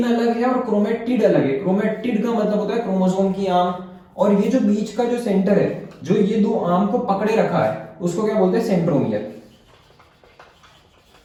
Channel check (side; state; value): both; identical; correlation 1.00